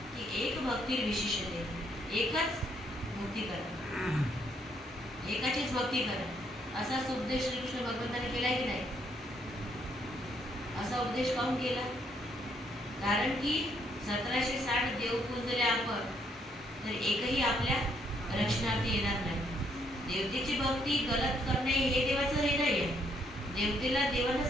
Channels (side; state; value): both; normal; correlation 0.71